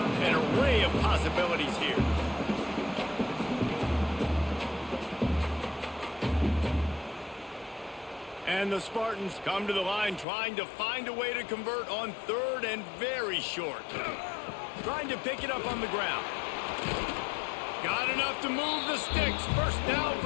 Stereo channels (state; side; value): drops out; right; at 10.2 s